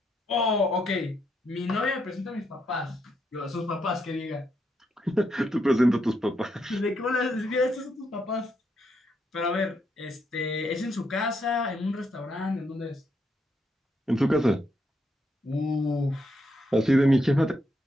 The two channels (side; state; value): both; normal; correlation 0.78